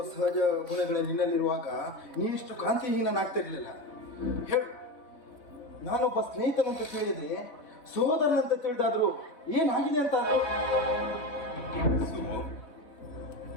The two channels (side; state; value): right; late; 3.6 ms